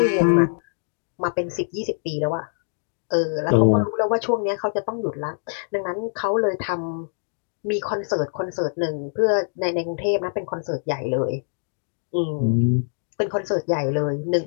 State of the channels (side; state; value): right; silent; digital silence